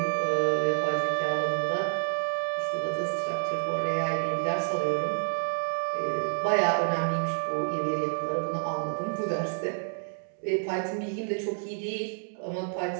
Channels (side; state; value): left; silent; digital silence